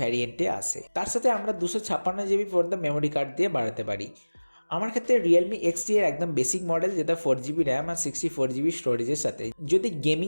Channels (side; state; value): both; inverted; correlation -1.00